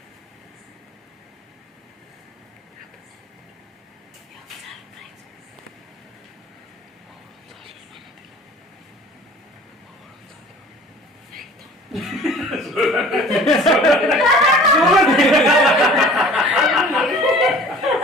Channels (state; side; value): normal; both; correlation 0.46